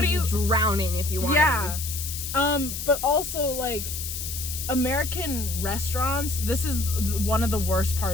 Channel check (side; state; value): left; noise; hiss, 6 dB below the sound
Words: are you be drowning if you wanted. Yeah. But also like American restaurants, this is one of the worst